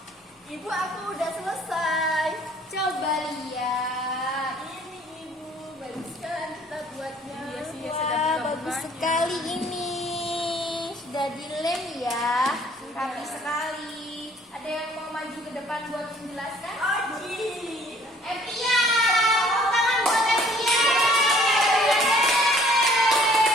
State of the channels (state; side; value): normal; both; correlation 0.57